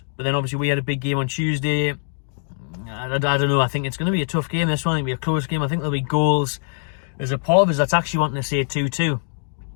But then obviously we had a big game on Tuesday. I don't know. I think it's going to be a tough game, this one. I think it'll be a close game. I think there'll be goals. There's a part of us that's actually wanting to say 2-2.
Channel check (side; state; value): right; silent; digital silence